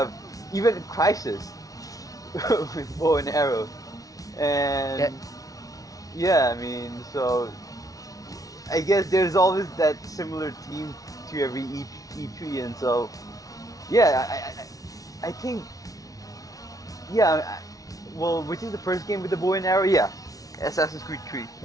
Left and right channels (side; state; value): right; late; 0.18 ms